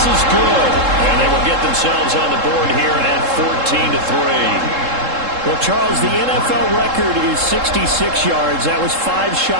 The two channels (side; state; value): left; late; 3.7 ms